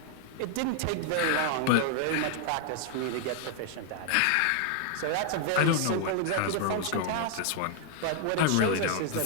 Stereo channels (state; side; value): different; both; correlation 0.00